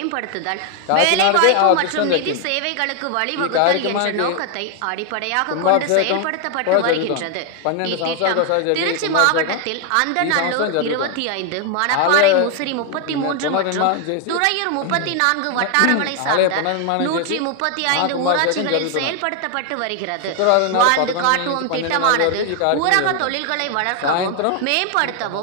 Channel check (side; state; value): both; different; correlation 0.01